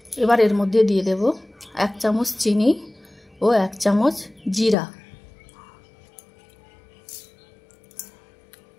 एबार एर मध्य दिए देब 1 चामच चीनी और 1 चामच जीरा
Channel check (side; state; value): right; drops out; at 4.8 s